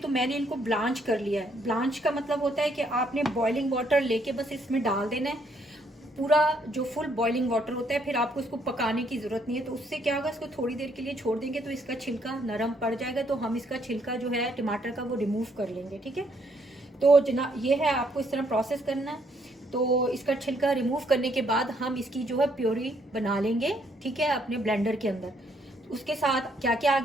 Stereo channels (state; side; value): normal; both; correlation 0.70